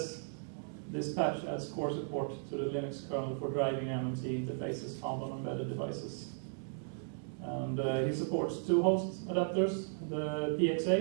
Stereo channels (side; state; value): left; silent; digital silence